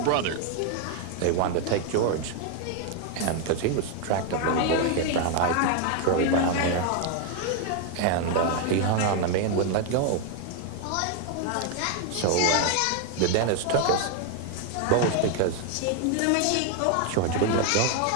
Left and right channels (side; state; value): both; different; correlation 0.00